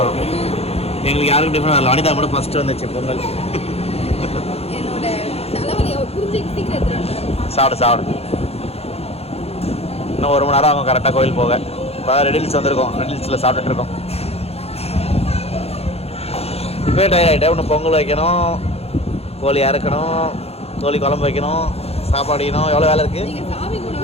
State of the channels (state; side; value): late; right; 0.29 ms